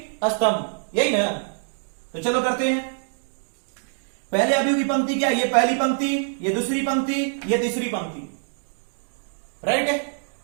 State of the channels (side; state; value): left; silent; digital silence